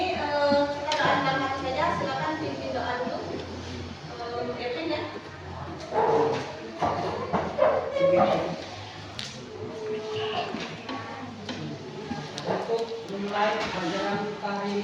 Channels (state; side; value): identical; both; correlation 1.00